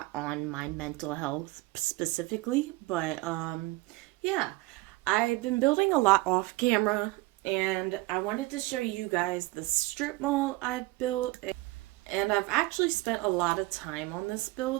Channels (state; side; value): quieter; left; 21.1 dB